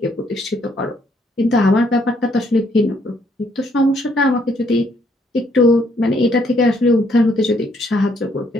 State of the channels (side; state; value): both; normal; correlation 0.69